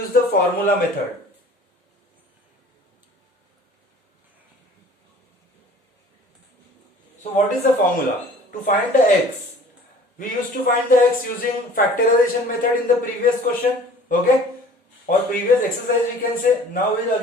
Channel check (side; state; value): both; normal; correlation 0.48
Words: the formula method. So what is the formula? To find the x, we used to find the x using factorization method in the previous question, okay, or previous exercise we can say. Now we will